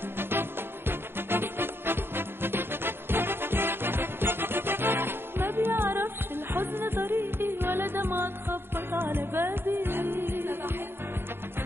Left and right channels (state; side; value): late; left; 0.11 ms